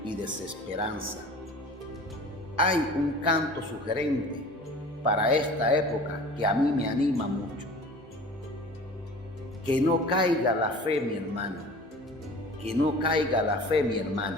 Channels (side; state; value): both; normal; correlation 0.42